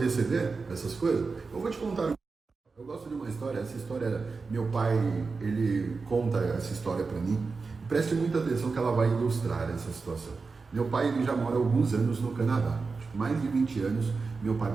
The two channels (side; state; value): left; quieter; 4.4 dB